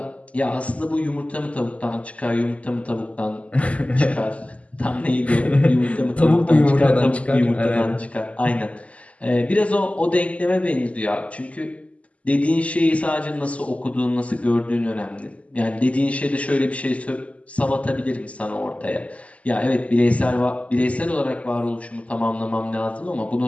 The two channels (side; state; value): right; late; 0.066 ms